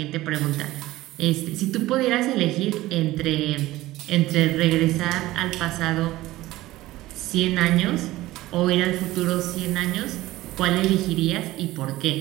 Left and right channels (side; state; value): left; quieter; 17.1 dB